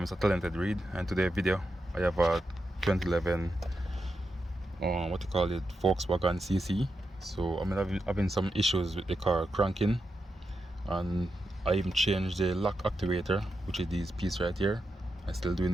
Talented Reed, and today's video I have a 2011 what you call it, Volkswagen CC. So I'm having some issues with the car cranking, and I even changed the lock actuator, which is this piece right here. I'm still doing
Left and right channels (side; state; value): both; normal; correlation 0.87